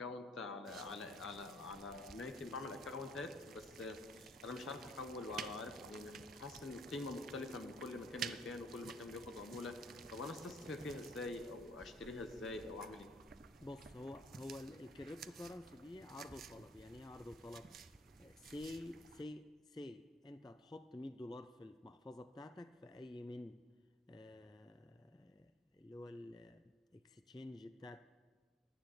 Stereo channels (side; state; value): both; normal; correlation 0.60